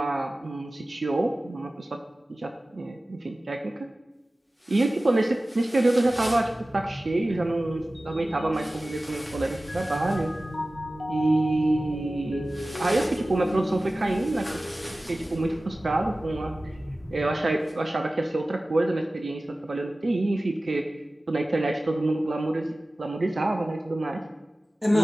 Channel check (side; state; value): both; normal; correlation 0.97